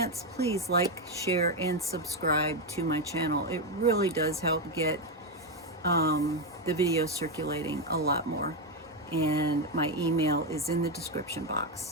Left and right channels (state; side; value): normal; both; correlation 0.07